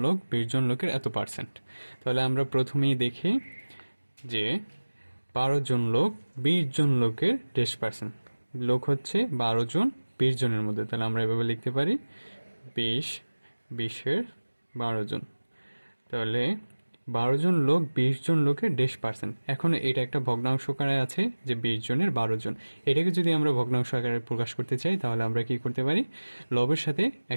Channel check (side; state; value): both; inverted; correlation -1.00